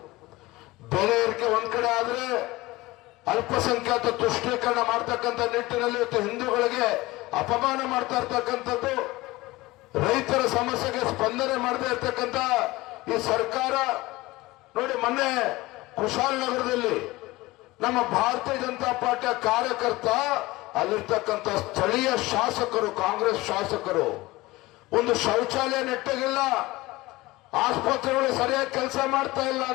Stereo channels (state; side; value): quieter; right; 20.0 dB